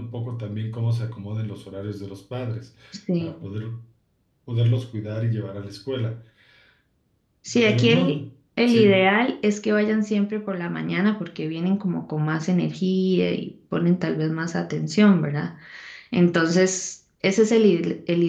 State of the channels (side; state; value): both; identical; correlation 1.00